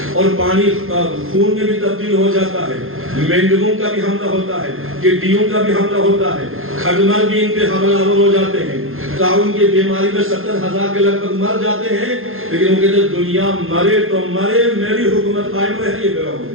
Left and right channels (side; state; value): left; late; 0.60 ms